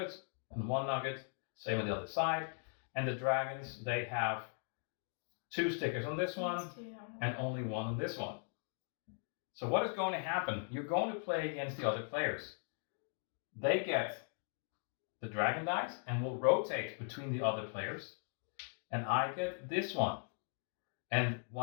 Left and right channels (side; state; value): right; silent; 52 dB below the other